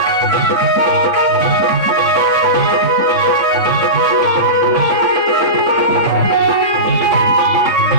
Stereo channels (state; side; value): late; left; 3.6 ms